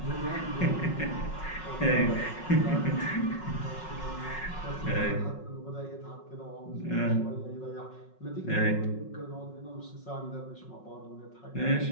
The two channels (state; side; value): late; right; 5.4 ms